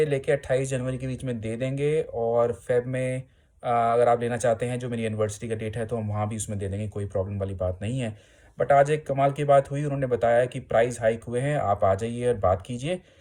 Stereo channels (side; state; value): both; identical; correlation 1.00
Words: लेके 28 जनवरी के बीच में दे देंगे और फ़ेब में अगर आप लेना चाहते हैं, जो मेरी एनिवर्सरी का डेट है, तो हम वहाँ भी उसमें दे देंगे, कोई प्रॉब्लम वाली बात नहीं है। बट आज एक कमाल की बात हुई, उन्होंने बताया कि प्राइस हाइक हुए हैं, आप आ जाइए और बात कीजिए।